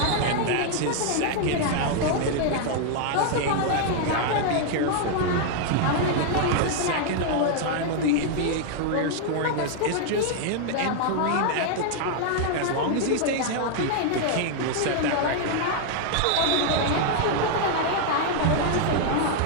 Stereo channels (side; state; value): both; different; correlation 0.00